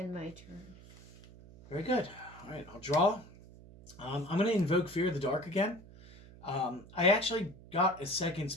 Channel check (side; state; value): right; noise; hum, 20 dB below the sound